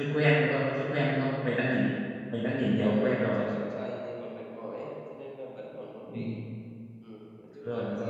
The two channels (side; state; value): both; identical; correlation 1.00